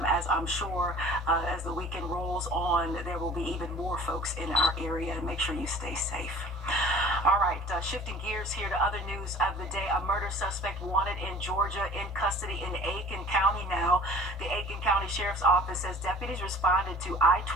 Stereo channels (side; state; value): both; normal; correlation 0.47